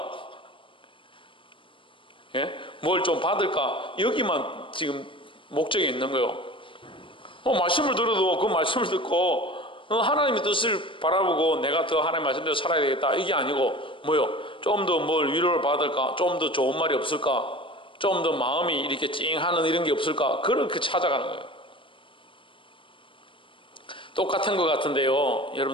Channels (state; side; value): late; right; 0.25 ms